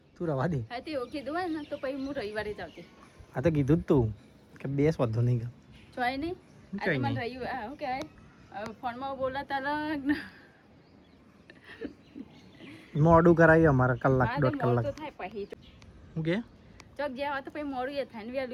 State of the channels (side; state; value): both; identical; correlation 1.00